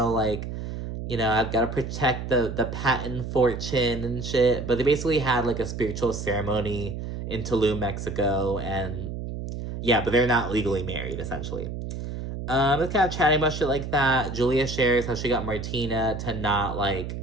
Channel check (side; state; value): right; noise; hum, 6 dB below the sound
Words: like, you know, I've got to protect the Patton fortune and shit. But they basically had like a spiritual ceremony in Tulum, Mexico, and yeah, but they're not legally married, essentially. It's kind of chatting about shit like that. Julia shares how she got Martina to not like.